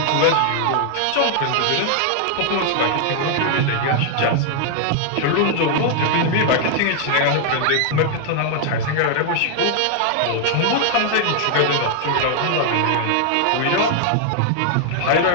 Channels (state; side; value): different; both; correlation 0.00